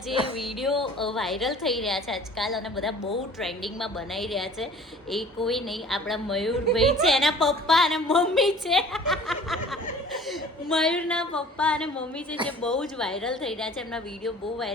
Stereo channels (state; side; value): normal; both; correlation 0.47